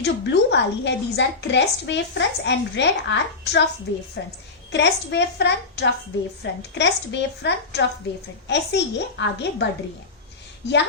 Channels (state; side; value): quieter; right; 3.9 dB